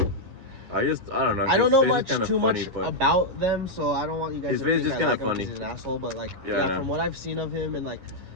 I don't know. I don't know much about them, so I don't want you guys to think I like him because he's an asshole. But like, from what I've seen of him, and like,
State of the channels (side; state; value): left; late; 11 ms